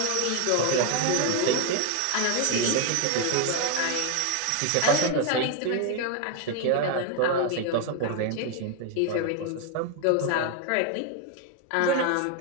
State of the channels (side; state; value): both; different; correlation 0.01